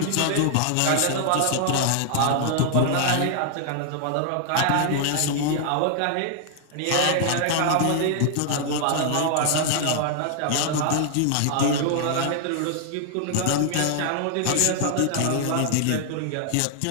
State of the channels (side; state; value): both; different; correlation 0.00